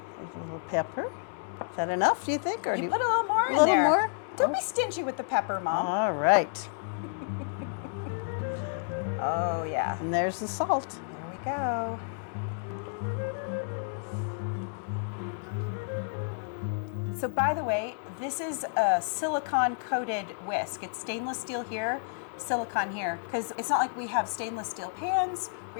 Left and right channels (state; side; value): silent; right; 58 dB below the other